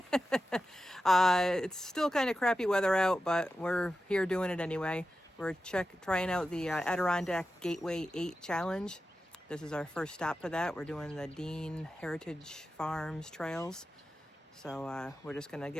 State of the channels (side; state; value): both; normal; correlation 0.92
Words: It's still kind of crappy weather out, but we're here doing it anyway. We're trying out the Adirondack Gateway8 challenge. This is our first stop for that. We're doing the Dean Heritage Farms trails. So we're just gonna